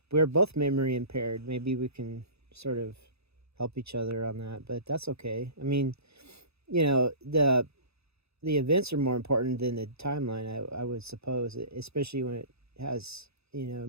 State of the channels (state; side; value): late; left; 0.79 ms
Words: we're both memory impaired. Maybe we can sort of help each other on that, but that's okay. I mean, the events are more important than the timeline, I would suppose, especially when it has,